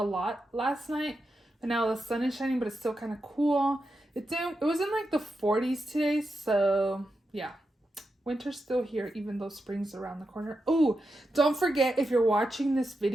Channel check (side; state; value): both; normal; correlation 0.88